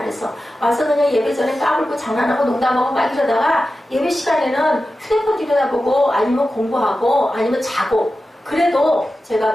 와서 그냥 예배 전에 까불고 장난하고 농담하고 막 이러다가 예배 시간에는 휴대폰 들여다보고 아니면 공부하고 아니면 자고. 그래도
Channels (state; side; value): normal; both; correlation 0.93